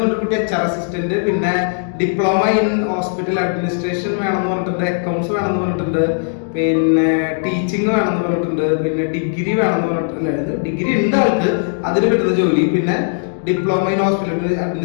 പറഞ്ഞ കുട്ടി HR അസിസ്റ്റന്റ്, പിന്നെ ഡിപ്ലോമ ഇൻ ഹോസ്പിറ്റൽ അഡ്മിനിസ്ട്രേഷൻ വേണമെന്ന് പറഞ്ഞിട്ടുണ്ട്, അക്കൗണ്ട്സ് വേണമെന്ന് പറഞ്ഞിട്ടുണ്ട്, പിന്നെ ടീച്ചിങ് വേണമെന്ന് പറഞ്ഞിട്ടുണ്ട്, പിന്നെ ഡിഗ്രി വേണമെന്ന് പറഞ്ഞിട്ടുണ്ട്. ഡിഗ്രി ഉണ്ട് ആൾക്ക്, അതിന് കിട്ടുന്ന ജോലി, പിന്നെ diploma in hospital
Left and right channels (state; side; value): silent; right; digital silence